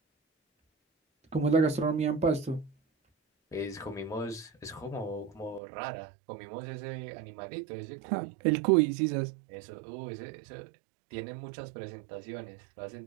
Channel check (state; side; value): drops out; left; at 5.6 s